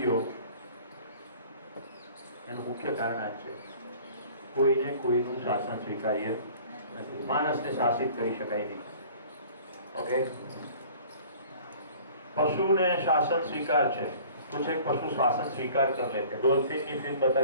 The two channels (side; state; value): both; inverted; correlation -0.49